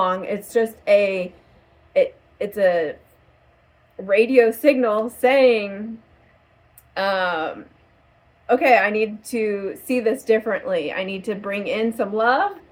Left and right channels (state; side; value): identical; both; correlation 1.00